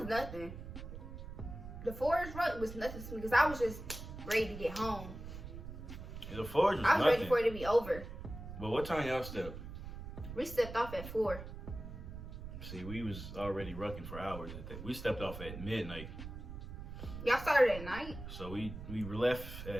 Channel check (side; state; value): right; noise; rumble, 10 dB below the sound